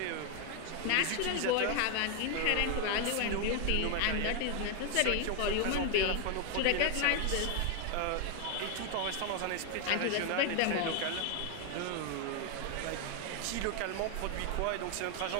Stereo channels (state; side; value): different; both; correlation 0.01